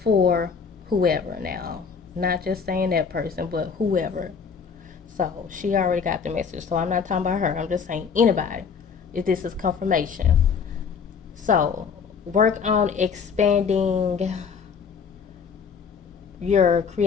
whoever now. Not just saying that person, but whoever. So she already got the message. So I'm not talking about her. I'm just saying anybody. If this is confirmation. So work on expanding your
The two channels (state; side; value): quieter; right; 6.1 dB